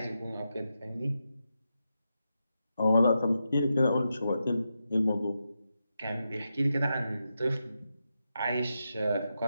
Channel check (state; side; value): inverted; both; correlation -0.87